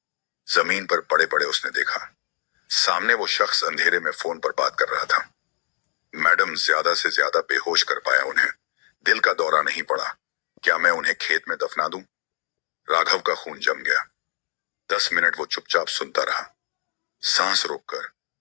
जमीन पर पड़े पड़े उसने देखा, सामने वो शख्स अंधेरे में फोन पर बात कर रहा था। मैडम, ज्यादा से ज्यादा बेहोश कर पाया उन्हें। दिल का दौरा नहीं पड़ा। क्या मैं उन्हें खेत में दफना दूं? राघव का खून जम गया। 10 मिनट वो चुपचाप सुनता रहा, सांस रोककर।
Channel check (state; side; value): silent; right; digital silence